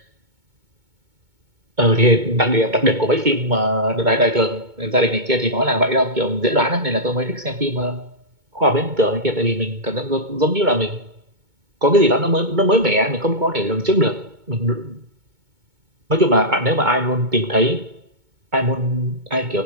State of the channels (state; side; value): late; left; 2.2 ms